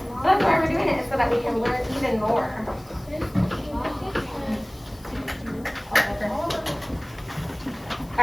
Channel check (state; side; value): noise; left; hiss, 25 dB below the sound